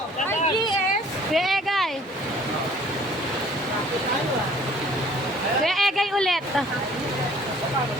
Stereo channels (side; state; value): both; normal; correlation 0.54